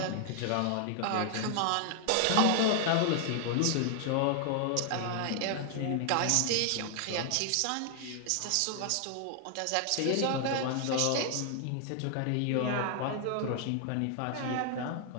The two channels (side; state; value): both; different; correlation 0.00